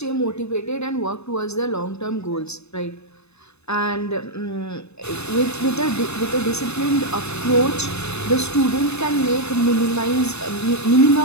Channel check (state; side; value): late; right; 0.80 ms